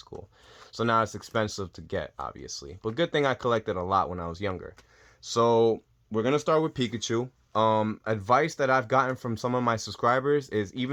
So now it's expensive to get, obviously. But good thing I collected a lot when I was younger. So we're going to start with Pikachu. Advice that I've gotten from some of my subscribers is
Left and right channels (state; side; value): identical; both; correlation 1.00